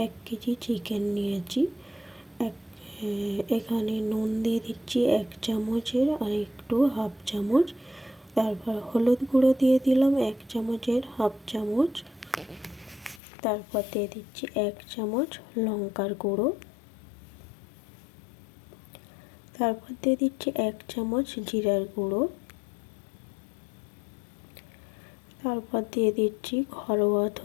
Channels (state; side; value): drops out; right; at 13.2 s